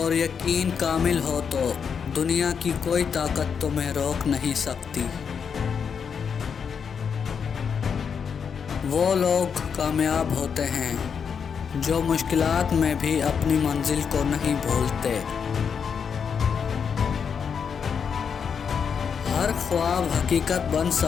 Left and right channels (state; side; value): quieter; right; 6.7 dB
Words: یقین کامل ہو تو دنیا کی کوئی طاقت تمہیں روک نہیں سکتی۔ وہ لوگ کامیاب ہوتے ہیں جو مشکلات میں بھی اپنی منزل کو نہیں بھولتے۔ ہر خواب حقیقت بن